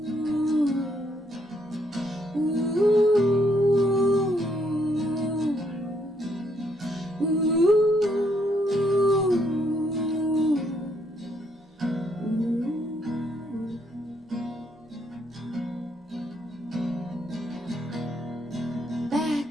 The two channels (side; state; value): both; normal; correlation 0.72